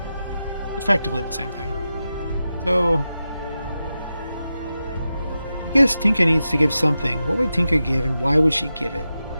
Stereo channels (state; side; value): inverted; both; correlation -0.91